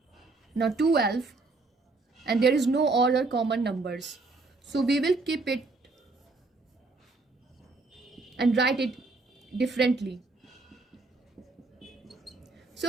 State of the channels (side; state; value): left; quieter; 3.6 dB